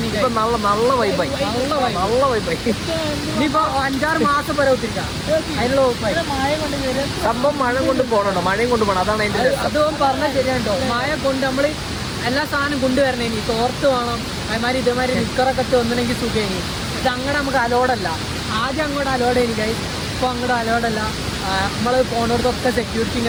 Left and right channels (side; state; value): both; identical; correlation 1.00